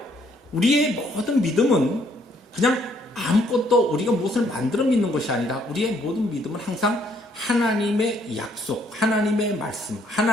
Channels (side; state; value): both; normal; correlation 0.67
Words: 우리의 모든 믿음은 그냥 아무것도 우리가 무엇을 만들어 믿는 것이 아니라 우리의 모든 믿음은 항상 하나님의 약속, 하나님의 말씀,